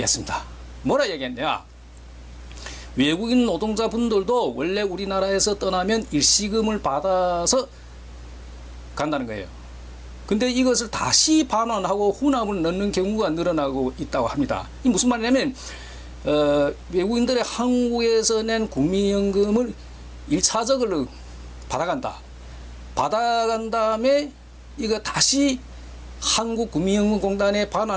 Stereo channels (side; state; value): both; identical; correlation 1.00